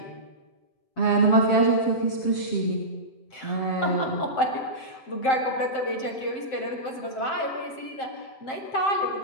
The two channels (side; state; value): right; late; 7.6 ms